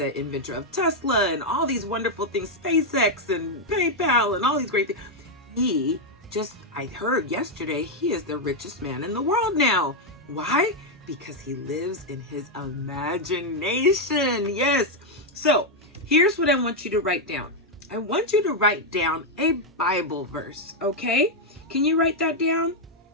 inventor of Tesla and all these wonderful things, SpaceX and PayPal and all these great things, I heard yesterday, he is the richest man in the world now. Why? Because he lives in his imagination. Yes. So here's what I want you to write down. I want you to write down a Bible verse, okay? Can you write that down?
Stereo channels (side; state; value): both; normal; correlation 0.00